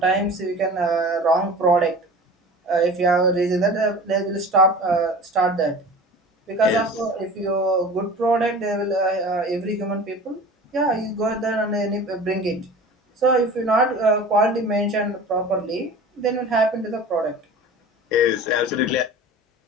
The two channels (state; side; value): normal; both; correlation 0.38